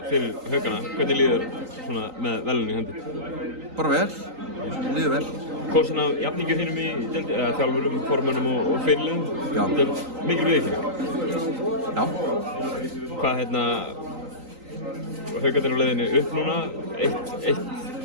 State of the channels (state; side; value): late; left; 3.9 ms